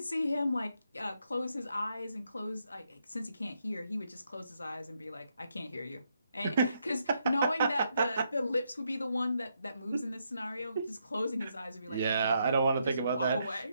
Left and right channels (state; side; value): inverted; both; correlation -0.78